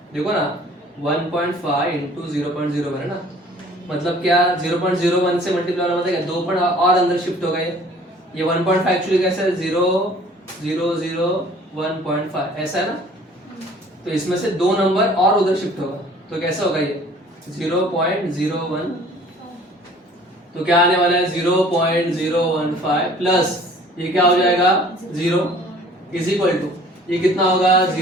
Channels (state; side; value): normal; both; correlation 0.51